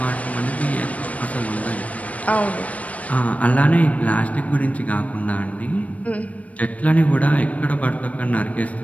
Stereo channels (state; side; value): late; right; 0.068 ms